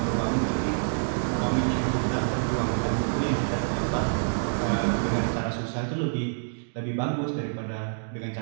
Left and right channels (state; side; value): silent; left; digital silence